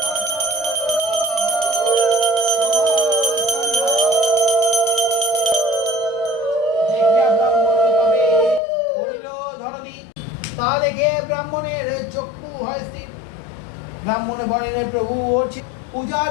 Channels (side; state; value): right; drops out; at 8.6 s